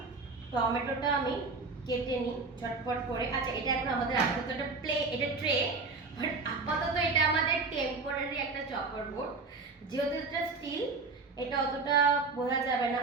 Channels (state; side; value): quieter; left; 4.0 dB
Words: টমেটোটা আমি কেটে নিই ঝটপট করে। আচ্ছা, এটা এখন আমাদের আপাতত একটা এটা ট্রে, বাট আপাতত এটা আমাদের টেম্পোরারি একটা চপার বোর্ড, যেহেতু এটা স্টিল, এটা অতটা বোঝা যাবে না।